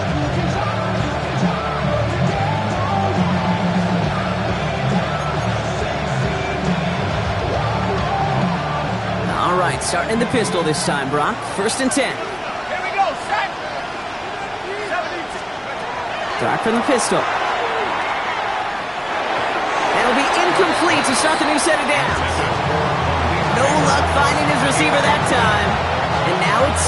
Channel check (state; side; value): identical; both; correlation 1.00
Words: Starting in the pistol this time, Brock. 1st and 10. Here we go, set. Dart from the pistol. It'll be incomplete to start the new set of downs. No luck finding his receiver that time. And now it's